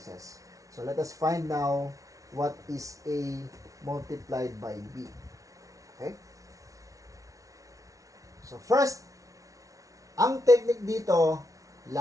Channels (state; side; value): late; left; 0.17 ms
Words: So, let us find now what is A multiplied by B. Okay? So, first, ang technique dito,